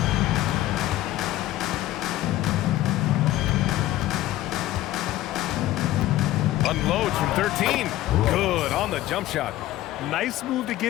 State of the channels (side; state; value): right; quieter; 15.1 dB